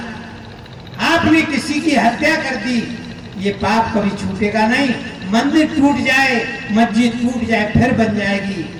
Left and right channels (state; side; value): identical; both; correlation 1.00